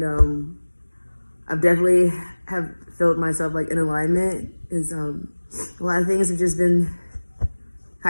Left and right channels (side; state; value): both; inverted; correlation -1.00